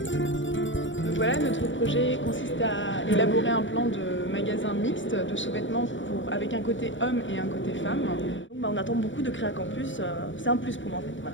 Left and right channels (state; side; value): late; right; 0.55 ms